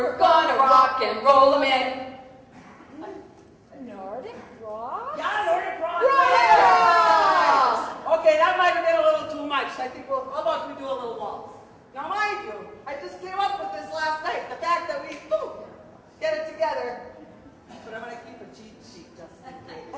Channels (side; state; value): both; identical; correlation 1.00